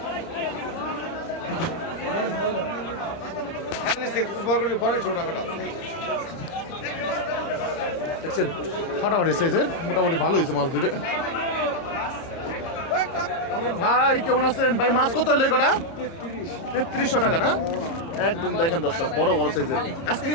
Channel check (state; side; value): late; right; 30 ms